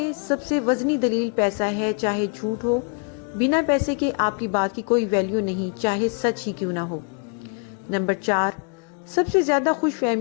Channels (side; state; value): right; quieter; 37.7 dB